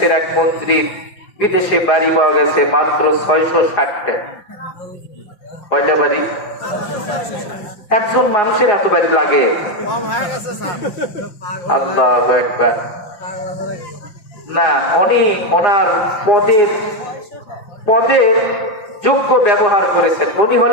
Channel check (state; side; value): late; right; 4.8 ms